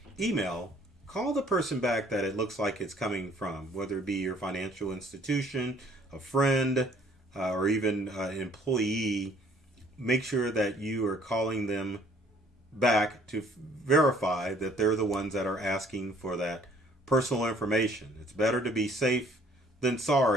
email, call the person back that it looks like it's coming from, whether it be your financial institution, a friend, or even an employee. Make sure that you are calling them back to verify that they're the ones that are asking for that personal information. It's better to be safe than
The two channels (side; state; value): both; normal; correlation 0.59